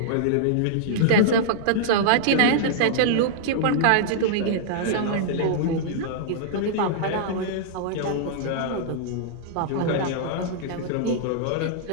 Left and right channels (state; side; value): different; both; correlation -0.02